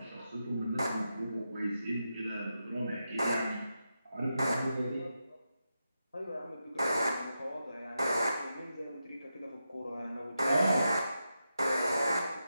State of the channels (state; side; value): inverted; both; correlation -0.88